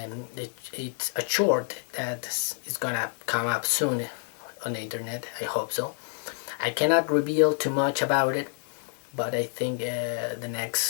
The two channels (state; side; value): silent; right; 59 dB below the other